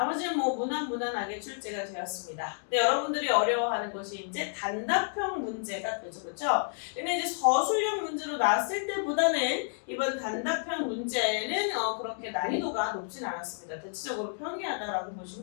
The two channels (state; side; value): silent; right; digital silence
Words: 무난하게 출제가 되었습니다. 근데 여러분들이 어려워하는 것이 이제 단답형 문제가 되죠. 그렇죠? 근데 이제 서술형 문제로 나왔을 때보다는 이번 단답형 문제는 그렇게 난이도가 높진 않았습니다. 대체적으로 평이하다라고